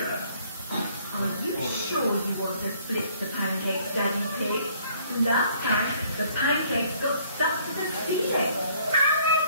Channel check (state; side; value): inverted; both; correlation -0.62